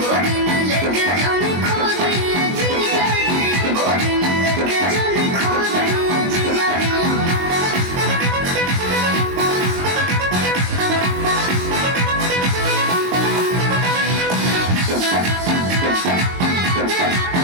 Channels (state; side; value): late; left; 22 ms